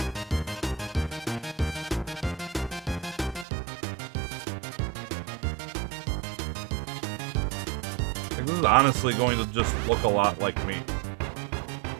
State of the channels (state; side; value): drops out; left; at 3.5 s